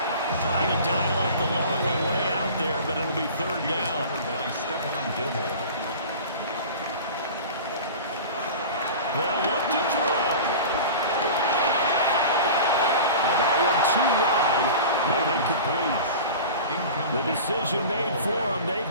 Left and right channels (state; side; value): inverted; both; correlation -0.36